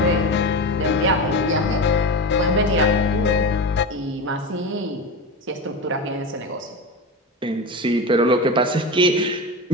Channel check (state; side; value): normal; both; correlation 0.23